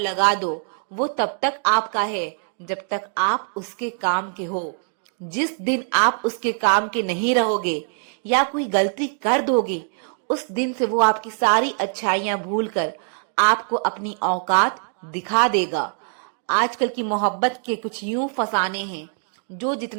दो, वो तब तक आपका है जब तक आप उसके काम के हो। जिस दिन आप उसके काम के नहीं रहोगे या कोई गलती कर दोगे, उस दिन से वो आपकी सारी अच्छाइयां भूलकर आपको अपनी औकात दिखा देगा। आजकल की मोहब्बत के कुछ यूं फसाने हैं, जो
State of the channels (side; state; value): left; silent; 55 dB below the other